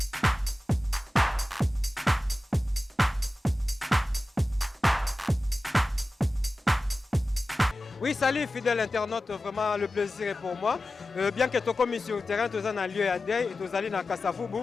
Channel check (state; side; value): normal; both; correlation 0.95